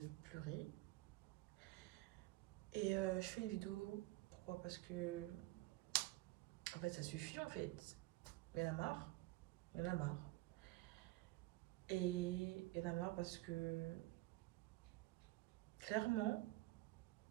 pleurer. Et je fais une vidéo, pourquoi? Parce que, en fait, ça suffit en fait. Il y en a marre, il y en a marre. Et il y en a marre parce que, clairement,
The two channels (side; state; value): left; quieter; 18.9 dB